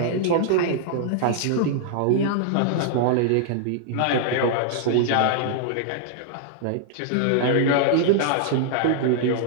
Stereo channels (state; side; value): different; both; correlation -0.01